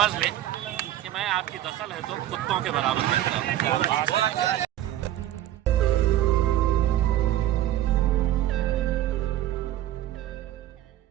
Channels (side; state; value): left; quieter; 13.0 dB